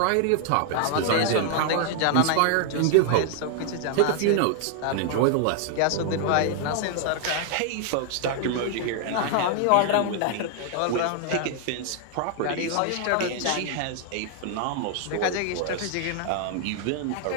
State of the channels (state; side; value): different; both; correlation 0.00